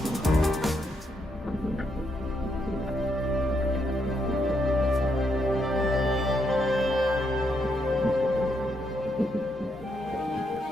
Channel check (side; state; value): both; normal; correlation 0.77